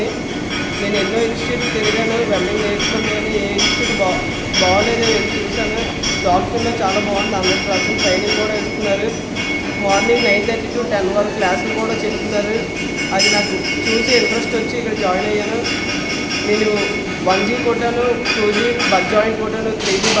నేను ఎన్నో ఇన్స్టిట్యూట్ తిరిగాను, వెల్డింగ్ నేర్చుకున్నాను. ఏ ఇన్స్టిట్యూట్ బాగోలేదు చూశాను. డాక్టర్లో చాలా బాగుంది, 100% ట్రైనింగ్ కూడా ఇస్తున్నారు. మార్నింగ్ 9:30 to 10 వరకు క్లాసులు కూడా చెప్తున్నారు. అది నాకు చూసి ఇంట్రెస్ట్ వచ్చి ఇక్కడ జాయిన్ అయ్యాను. నేను 1G కొట్టాను, 2G బడ్ జాయింట్ కొట్టాను, 3G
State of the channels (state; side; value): identical; both; correlation 1.00